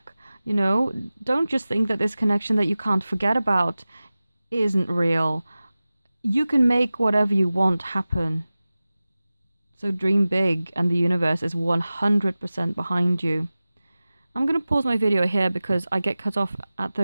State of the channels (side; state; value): both; inverted; correlation -0.97